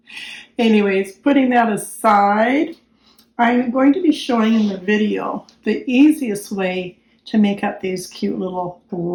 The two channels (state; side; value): identical; both; correlation 1.00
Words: Anyways, putting that aside, I'm going to be showing in the video the easiest way to make up these cute little